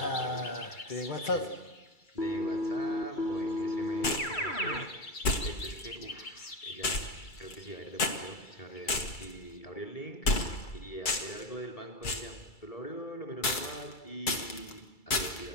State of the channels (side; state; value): right; late; 2.3 ms